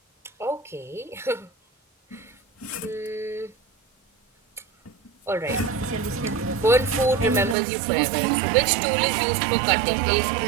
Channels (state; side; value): drops out; left; at 7.6 s